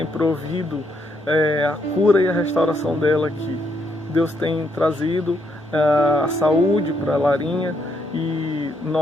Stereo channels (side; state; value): both; normal; correlation 0.75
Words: provido a cura e a restauração dela aqui. Deus tem trazido a saúde para a Larinha e